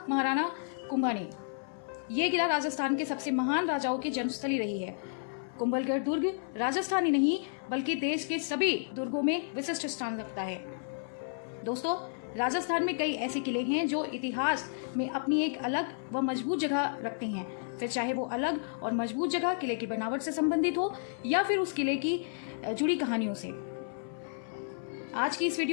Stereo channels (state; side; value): silent; right; 57 dB below the other